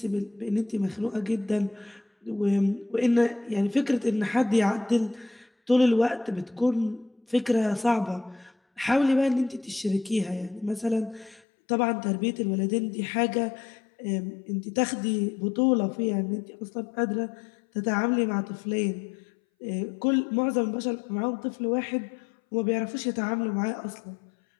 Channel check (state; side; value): drops out; right; at 11.4 s